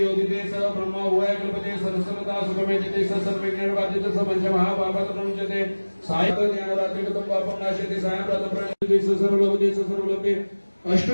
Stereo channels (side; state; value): both; inverted; correlation -1.00